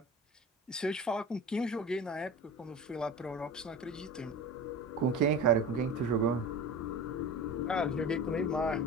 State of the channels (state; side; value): normal; both; correlation 0.32